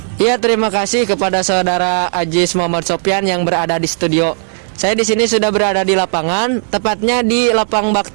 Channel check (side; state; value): left; silent; digital silence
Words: Iya, terima kasih kepada saudara Ajis Muhammad Sofyan yang berada di studio. Saya di sini sudah berada di lapangan, tepatnya di Lapang